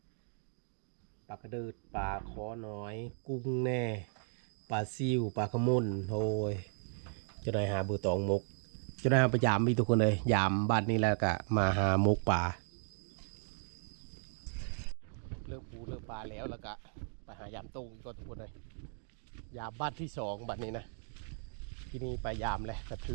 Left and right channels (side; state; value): left; silent; 54 dB below the other